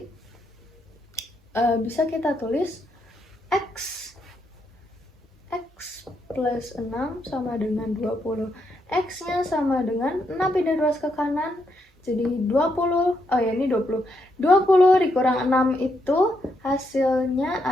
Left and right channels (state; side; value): normal; both; correlation 0.78